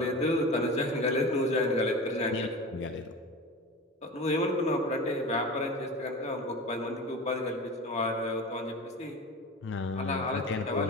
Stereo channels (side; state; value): both; normal; correlation 0.31